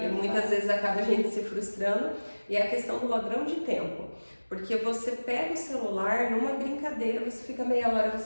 muitas vezes acaba a gente se frustrando. E é a questão do ladrão de tempo. Porque você pega o celular numa brincadeira, você fica meia hora,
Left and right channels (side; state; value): both; inverted; correlation -1.00